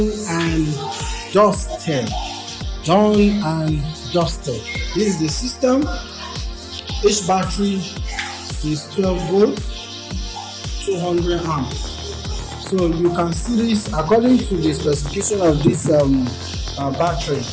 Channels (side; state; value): both; identical; correlation 1.00